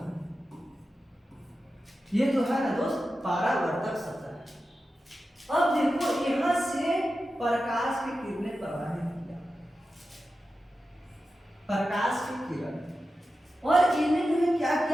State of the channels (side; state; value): both; normal; correlation 0.92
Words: ये जो है ना दोस्त परावर्तक सतह। अब देखो यहां से प्रकाश की किरणें प्रवाहित किया, प्रकाश की किरण, और इन्हें क्या